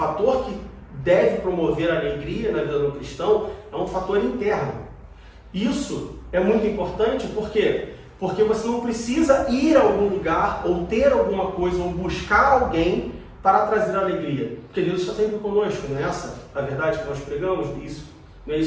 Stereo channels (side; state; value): both; identical; correlation 1.00